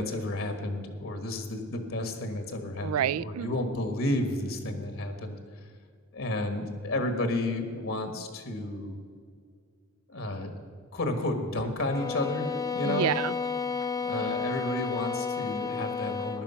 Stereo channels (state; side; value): normal; both; correlation 0.30